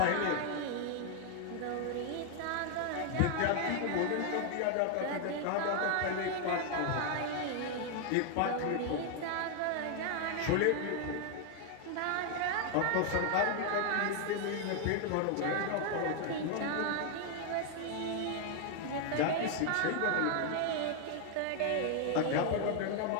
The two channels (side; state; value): both; different; correlation 0.00